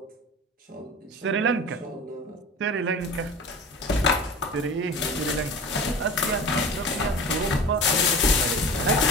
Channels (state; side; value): normal; both; correlation 0.35